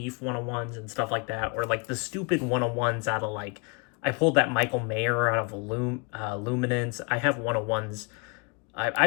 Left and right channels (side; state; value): right; quieter; 32.4 dB